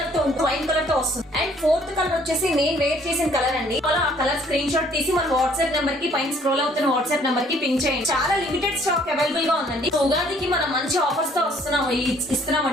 తో వస్తుంది. అండ్ ఫోర్త్ కలర్ వచ్చేసి నేను వేర్ చేసిన కలర్ అండి. ఆ కలర్ స్క్రీన్ షాట్ తీసి మన వాట్సాప్ నెంబర్ కి పైన స్క్రోల్ అవుతున్న వాట్సాప్ నెంబర్ కి పింక్ చేయండి. చాలా లిమిటెడ్ స్టాక్ అవైలబుల్ గా ఉందండి. ఉగాదికి మనం మంచి ఆఫర్స్ తో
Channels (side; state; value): both; normal; correlation 0.61